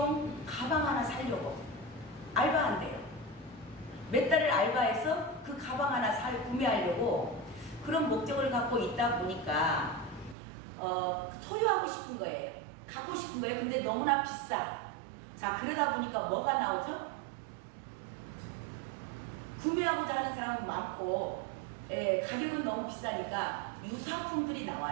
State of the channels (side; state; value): left; drops out; at 10.4 s